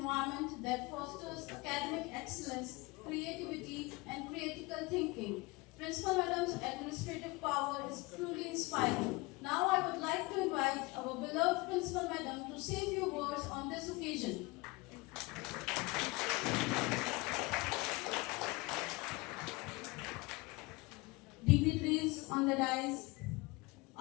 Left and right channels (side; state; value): right; quieter; 24.4 dB